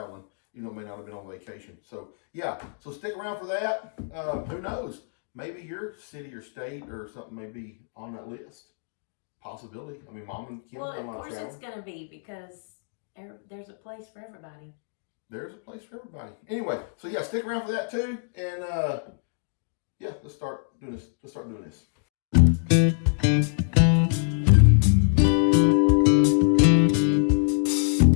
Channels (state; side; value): silent; right; digital silence